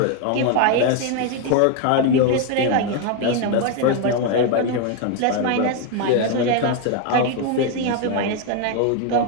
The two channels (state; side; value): different; both; correlation 0.01